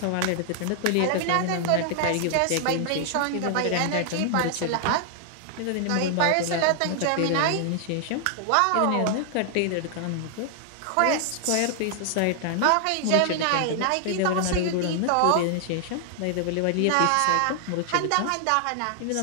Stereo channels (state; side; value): different; both; correlation 0.00